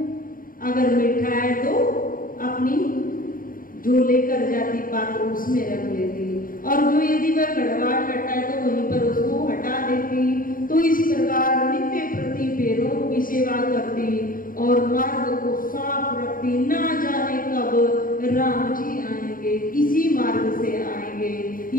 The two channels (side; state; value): right; late; 0.41 ms